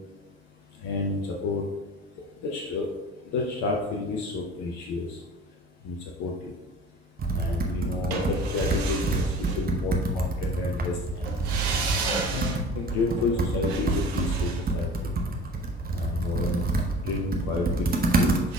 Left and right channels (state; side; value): normal; both; correlation 0.42